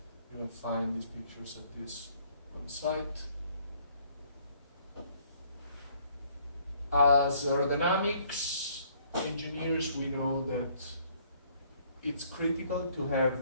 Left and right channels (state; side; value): inverted; both; correlation -0.63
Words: You will find these pictures at this website. As aerodynamics engineers, we know that it's critical to have